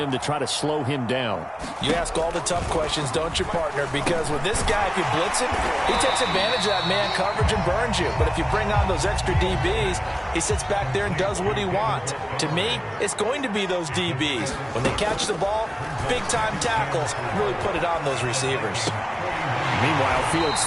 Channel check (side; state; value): both; identical; correlation 1.00